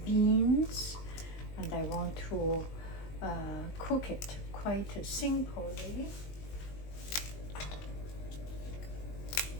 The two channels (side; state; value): right; late; 20 ms